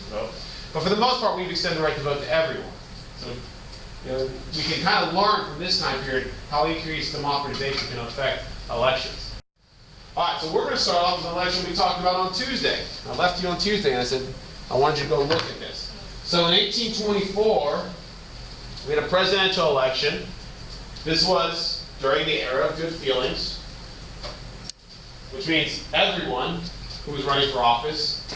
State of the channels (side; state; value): both; identical; correlation 1.00